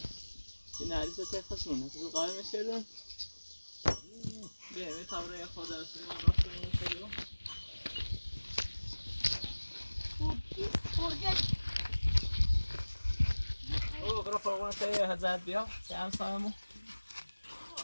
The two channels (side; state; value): both; inverted; correlation -1.00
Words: که neredeyse تخصونه. تو قایم میشدن. بیا تا برای خود از سیمان راست میشدیم. او برو فوقونه تایی هزار بیا. چند سالمو.